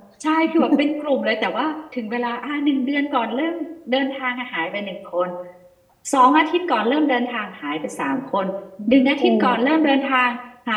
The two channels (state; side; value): identical; both; correlation 1.00